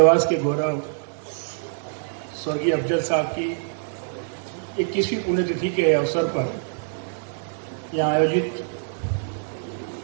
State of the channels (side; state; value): left; silent; digital silence